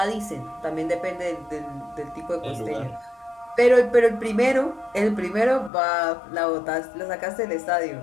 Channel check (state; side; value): drops out; right; at 5.7 s